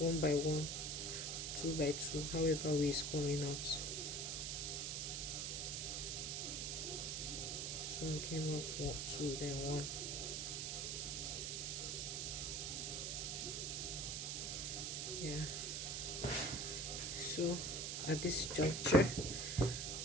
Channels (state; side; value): noise; right; hiss, 1 dB below the sound